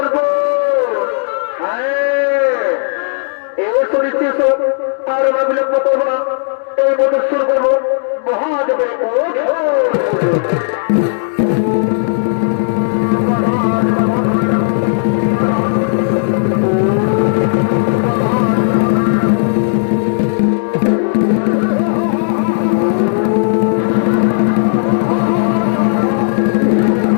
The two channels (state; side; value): silent; right; digital silence